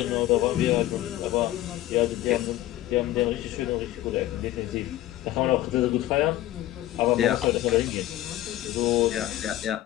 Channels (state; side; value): quieter; right; 14.6 dB